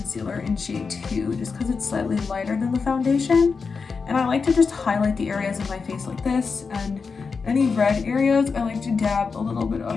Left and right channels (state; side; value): quieter; right; 5.0 dB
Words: in shade 2 just because it's slightly lighter than the foundation. And I like to just highlight the areas of my face like this, and any red areas, I like to dab a little bit